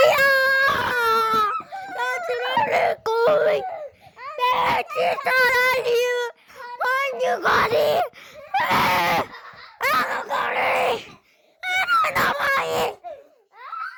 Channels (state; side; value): identical; both; correlation 1.00